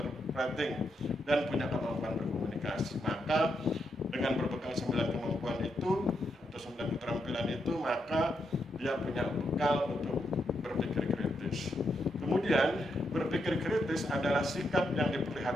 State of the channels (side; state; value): both; normal; correlation 0.81